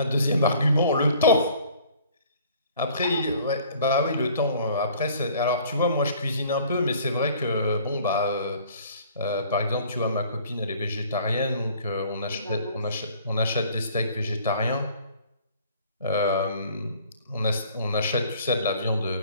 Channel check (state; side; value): inverted; both; correlation -0.54